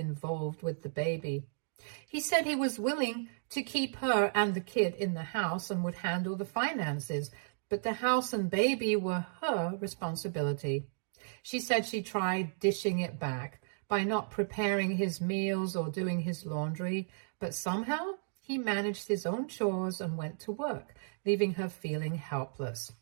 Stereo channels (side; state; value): left; silent; digital silence